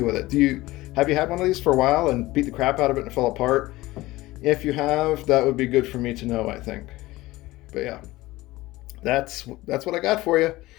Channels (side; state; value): right; quieter; 18.7 dB